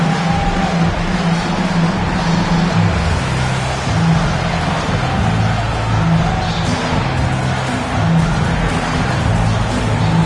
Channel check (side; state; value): both; identical; correlation 1.00